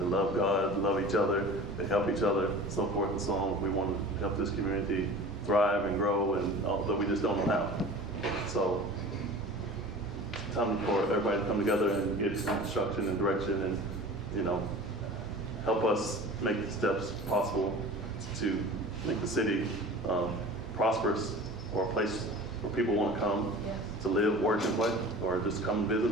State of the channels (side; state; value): both; normal; correlation 0.39